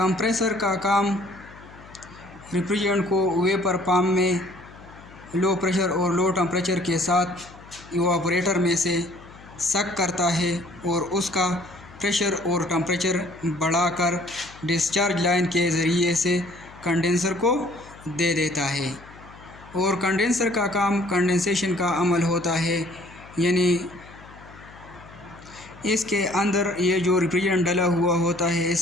کا کام ریفریجرینٹ کو ویپر پمپ میں لو پریشر اور لو ٹمپریچر کے ساتھ ایواپوریٹر میں سے سک کرتا ہے اور اس کا پریشر اور ٹمپریچر بڑھا کر ڈسچارج لائن کے ذریعے سے کنڈینسر کو دے دیتا ہے۔ اور کنڈینسر کا کام کنڈینسیشن کا عمل ہوتا ہے، یعنی اس کے اندر یہ جو ریفریجرینٹ ڈلا ہوا ہوتا ہے اس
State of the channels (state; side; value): noise; left; hum, 21 dB below the sound